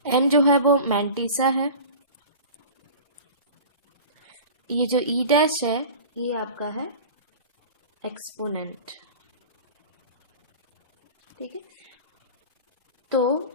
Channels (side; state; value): both; inverted; correlation -0.37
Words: n जो है वो मैंटिसा है, ये जो e डैश है ये आपका है एक्सपोनेंट, ठीक है। तो